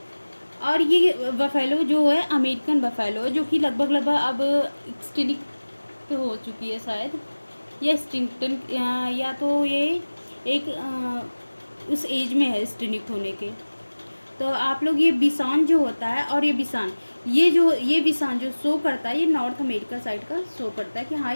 और ये बफेलो जो है अमेरिकन बफेलो है, जो कि लगभग अब एक्सटिंक्ट हो चुकी है शायद, या एक्सटिंक्टन, या तो ये एक उस एज में है एक्सटिंक्ट होने के। तो आप लोग ये बिसॉन जो होता है, और ये बिसॉन, ये बिसॉन जो शो करता है, ये नॉर्थ अमेरिका साइड का शो करता है कि हाँ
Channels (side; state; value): both; inverted; correlation -1.00